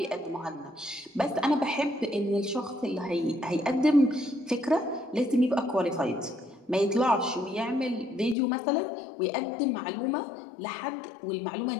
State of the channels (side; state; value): right; drops out; at 8.3 s